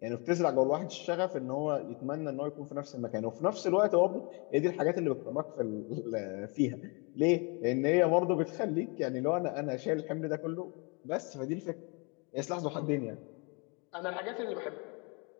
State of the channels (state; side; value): quieter; right; 32.2 dB